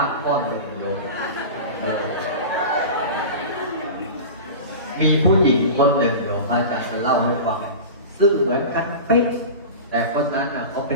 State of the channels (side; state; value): both; inverted; correlation -0.31